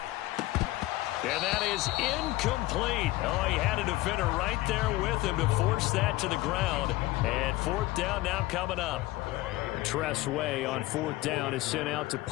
And that is incomplete. Oh, he had a defender right there with him to force that to the ground. And fourth down now coming up. Tress Way on fourth down is sent out to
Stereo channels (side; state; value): right; quieter; 18.3 dB